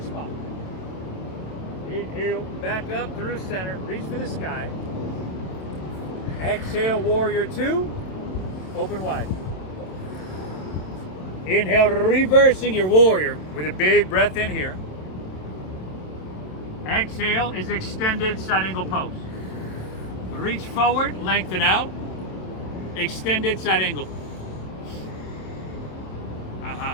spine. Inhale, back up through center. Reach for the sky. Exhale, warrior 2. Open wide. Inhale, reversing your warrior with a big breath in here. Exhale is extended side angle pose. Reach forward, lengthen out. Extended side angle.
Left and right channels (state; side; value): late; right; 27 ms